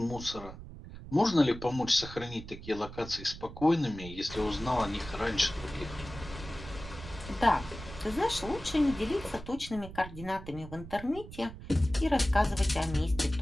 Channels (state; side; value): noise; right; rumble, 13 dB below the sound